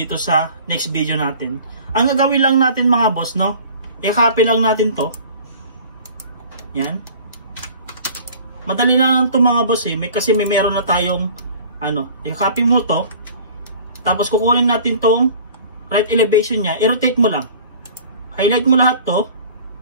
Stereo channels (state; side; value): inverted; both; correlation -0.45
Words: sa next video natin. Ang gagawin lang natin mga boss, no, i-copy lang natin to. Yan. Madali lang to mga boss kasi may meron na tayong i-copy mo to. Tapos kukunin natin tong right elevation nya, i-rotate mo lang. Highlight mo lahat to.